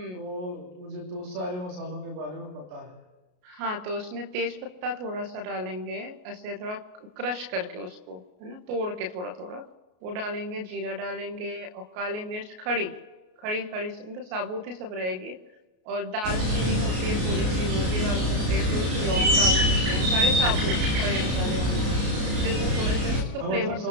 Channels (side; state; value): left; late; 33 ms